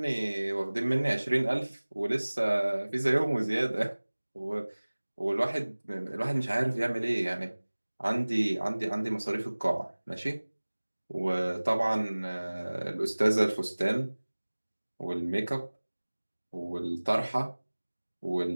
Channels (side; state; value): both; inverted; correlation -1.00